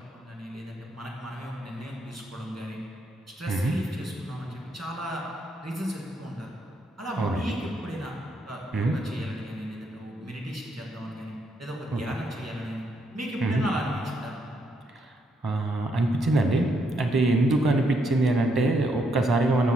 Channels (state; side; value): normal; both; correlation 0.76